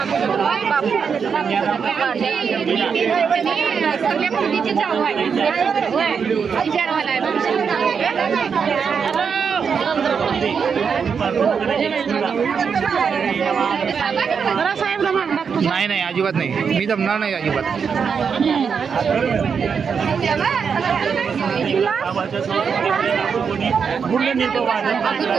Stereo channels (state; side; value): quieter; left; 6.3 dB